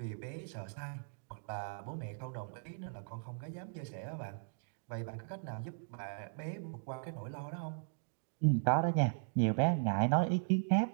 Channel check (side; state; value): left; silent; digital silence